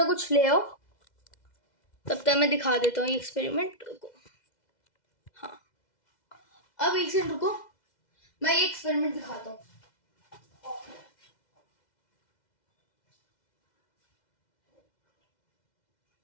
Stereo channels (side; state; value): right; late; 2.0 ms